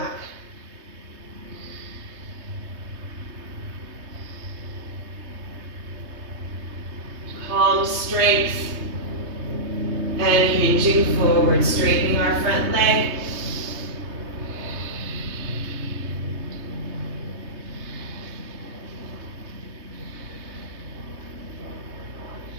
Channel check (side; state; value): left; late; 3.3 ms